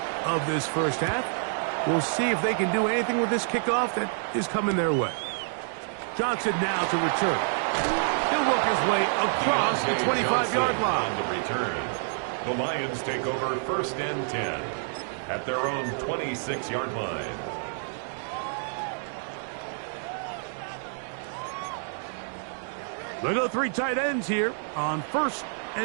of this 1st half. We'll see if they can do anything with this kickoff that is coming their way. Johnson now to return. He'll work his way across the 25-yard line. On the return, the Lions take over 1st and 10 at their own 26-yard line. They go 3 tight ends here on 1st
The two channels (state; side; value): silent; left; digital silence